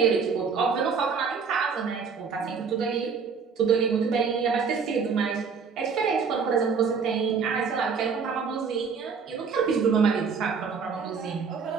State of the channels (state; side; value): quieter; left; 5.7 dB